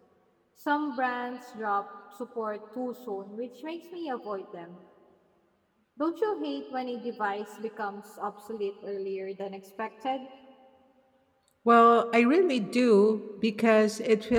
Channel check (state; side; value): identical; both; correlation 1.00